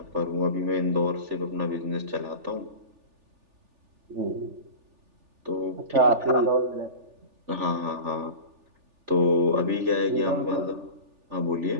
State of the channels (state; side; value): late; left; 3.4 ms